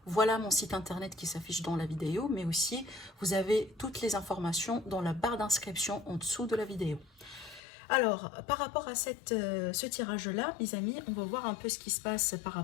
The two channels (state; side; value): drops out; right; at 7.6 s